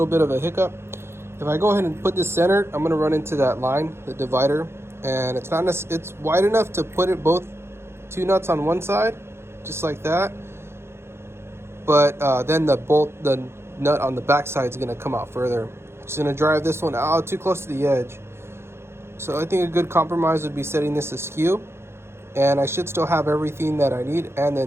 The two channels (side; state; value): left; late; 0.12 ms